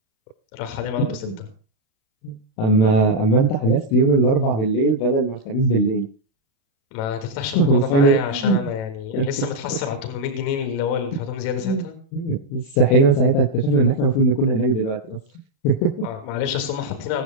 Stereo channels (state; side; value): late; right; 36 ms